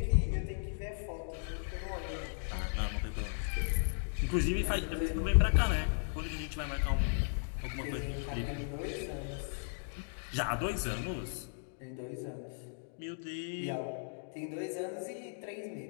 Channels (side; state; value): right; silent; digital silence